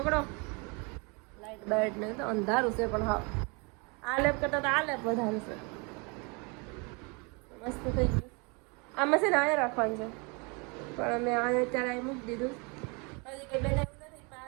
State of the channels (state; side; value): quieter; left; 31.1 dB